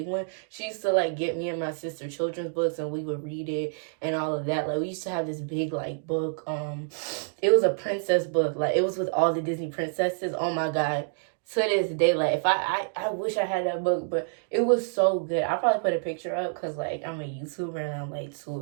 one. She used to like get me and my sister children's books, and we would read it and all of that. Like, we used to have this big like book. It was a princess book. Like, it was with all the Disney princesses. Oh my God. To this day, like, if I wish I had that book, but it was so good. I'll probably put a picture up because like I'm a YouTuber and I'm like too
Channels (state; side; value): silent; left; digital silence